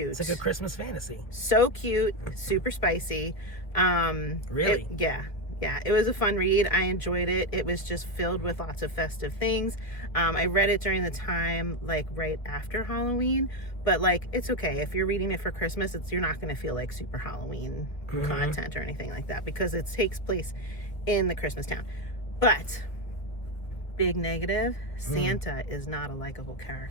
It's like a Christmas fantasy. So cute, super spicy. Really? Yeah. Yeah, it was a fun read. I enjoyed it. It was just filled with lots of festive things. I read it during the time, like right after Halloween, but like it's okay if you're reading it for Christmas. You're not going to feel like super Halloween content or anything like that because it takes place in the Christmas town. But big negative, Santa is not a likable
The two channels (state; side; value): late; right; 1.5 ms